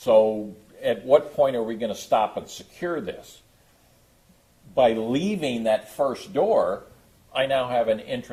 at what point are we going to stop and secure this? By leaving that first door, I now have an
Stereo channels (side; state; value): both; identical; correlation 1.00